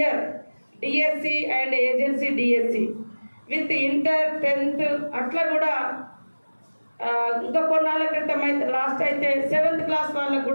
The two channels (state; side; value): inverted; both; correlation -1.00